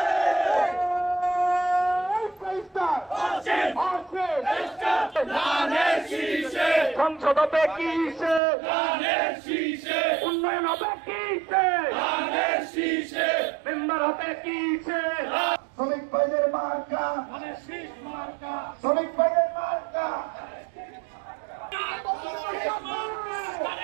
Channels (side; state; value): left; drops out; at 8.4 s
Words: সংসদ হবে কিসে, উন্নয়ন হবে কিসে, মেম্বার হবে কিসে। শ্রমিক ভাইদের মার্কা, শ্রমিক ভাইদের মার্কা,